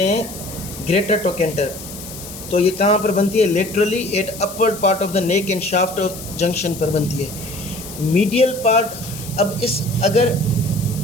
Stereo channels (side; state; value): left; noise; hiss, 13 dB below the sound